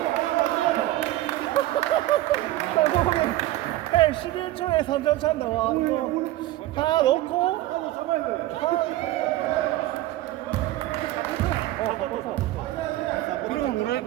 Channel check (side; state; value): left; quieter; 16.0 dB